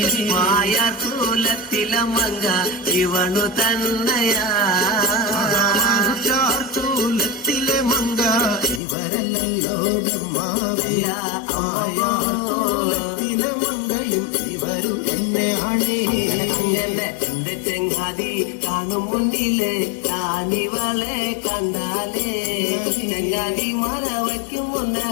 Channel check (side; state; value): right; drops out; at 8.8 s